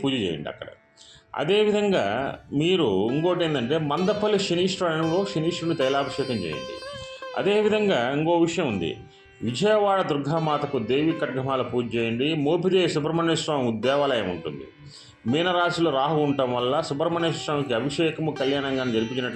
పూజ చేయండి అక్కడ. అదేవిధంగా మీరు ఇంకోటి ఏంటంటే మందపల్లి శనీశ్వరంలో శనీశ్వరుని తైలాభిషేకం చేయండి. అదేవిధంగా ఇంకో విషయం ఉంది. విజయవాడ దుర్గామాతకు దేవి ఖడ్గమాల పూజ చేయండి. మోపిదేవి సుబ్రహ్మణ్య స్వామి దేవాలయం ఉంటుంది. మీనరాశిలో రాహు ఉండటం వల్ల సుబ్రహ్మణ్య స్వామికి అభిషేకము, కళ్యాణంగా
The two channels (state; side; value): identical; both; correlation 1.00